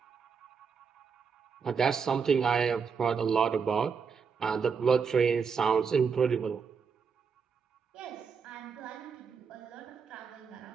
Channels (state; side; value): quieter; left; 6.0 dB